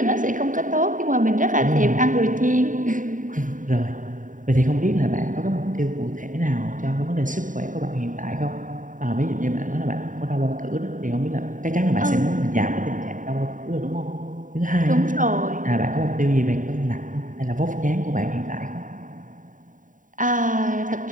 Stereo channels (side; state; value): left; late; 0.38 ms